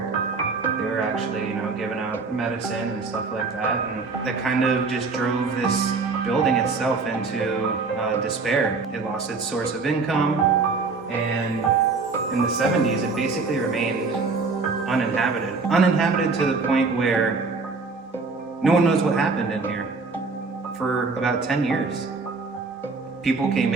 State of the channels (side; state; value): left; quieter; 4.3 dB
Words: they were actually, giving out medicine and stuff like that. And that kind of just drove this building itself into despair. It lost its source of income, and in the 70s, it basically remained uninhabited. Uninhabited to the point where no one knows what happened in here for about 10 years. People came